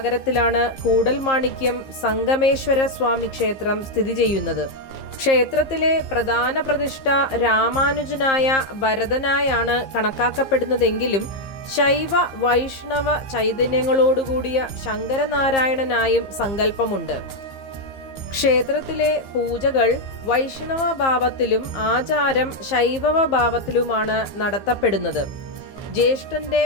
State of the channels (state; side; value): late; right; 15 ms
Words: കൂടൽമാണിക്യം സംഗമേശ്വര സ്വാമി ക്ഷേത്രം സ്ഥിതി ചെയ്യുന്നത്. ക്ഷേത്രത്തിലെ പ്രധാന പ്രതിഷ്ഠ രാമാനുജനായ ഭരതനായാണ് കണക്കാക്കപ്പെടുന്നതെങ്കിലും ശൈവ വൈഷ്ണവ ചൈതന്യങ്ങളോടുകൂടിയ ശങ്കരനാരായണനായും സങ്കല്പമുണ്ട്. ക്ഷേത്രത്തിലെ പൂജകൾ വൈഷ്ണവ ഭാവത്തിലും ആചാരം ശൈവവ ഭാവത്തിലുമാണ് നടത്തപ്പെടുന്നത്. ജ്യേഷ്ഠന്റെ